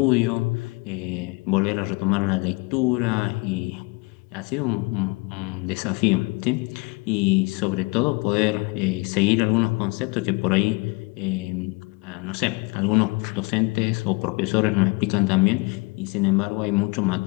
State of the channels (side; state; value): right; quieter; 27.5 dB